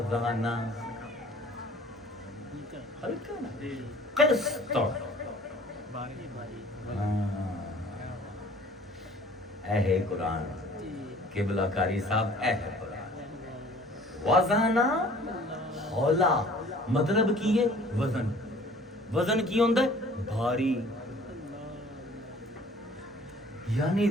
ہلکا نا قسط اے ہے قرآن قبلہ کاری صاحب اے ہے قرآن وزانا ہولا مطلب کی ہے وزن وزن کی ہوندہ ہے بھاری یعنی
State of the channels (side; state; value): both; normal; correlation 0.51